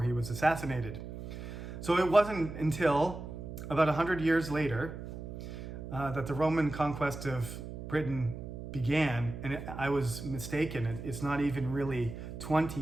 he was assassinated. So it wasn't until about 100 years later that the Roman conquest of Britain began, and I was mistaken. It's not even really 20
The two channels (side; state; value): right; noise; hum, 9 dB below the sound